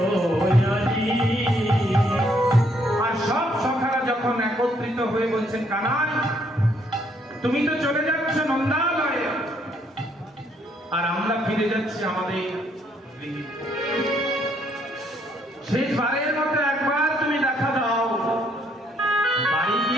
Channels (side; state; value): both; normal; correlation 0.69